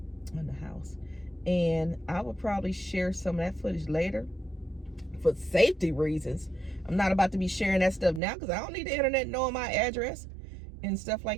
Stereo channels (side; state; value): left; drops out; at 8.2 s